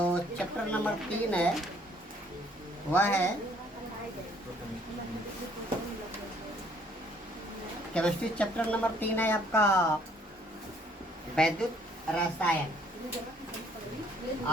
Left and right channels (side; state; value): both; normal; correlation 0.62